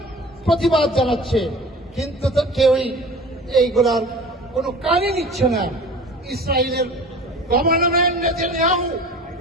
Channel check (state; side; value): normal; both; correlation 0.41